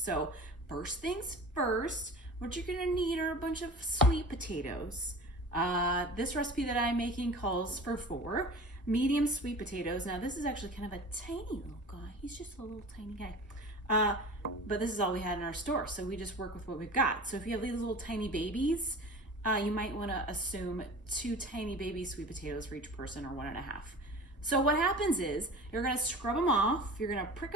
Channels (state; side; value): normal; both; correlation 0.38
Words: first things first, what you're going to need are a bunch of sweet potatoes. This recipe that I'm making calls for 4 medium sweet potatoes. Now this is actually kind of a tiny little guy. He's just a little tiny guy. But this is all we had in our store, so we just work with what we've got. So if you have these little tiny babies, you might want to assume 2 tiny baby sweet potatoes for each person, or 1.5. So what happens is you're going to scrub them off, you're going to prick